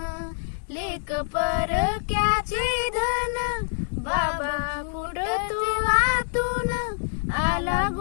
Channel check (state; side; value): silent; right; digital silence